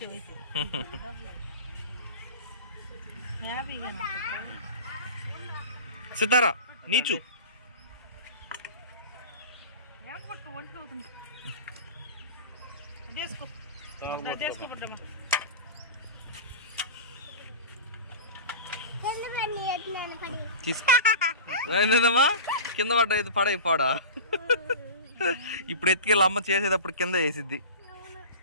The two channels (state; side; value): inverted; both; correlation -0.33